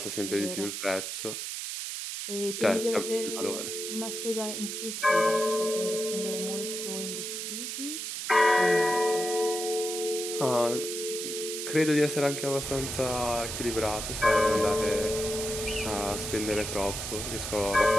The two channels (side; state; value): right; noise; hiss, 5 dB below the sound